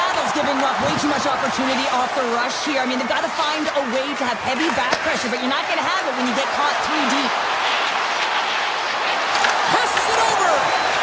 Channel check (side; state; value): both; identical; correlation 1.00